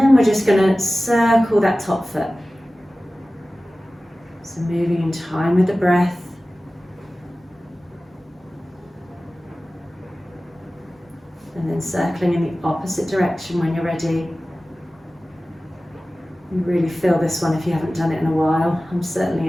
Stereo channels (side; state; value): both; normal; correlation 0.96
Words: we're just going to circle that top foot. So moving in time with the breath. And then circling in the opposite direction when you're ready. You really feel this one if you haven't done it in a while. I